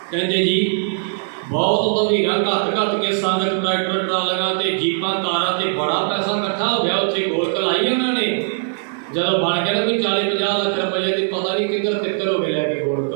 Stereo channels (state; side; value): silent; left; digital silence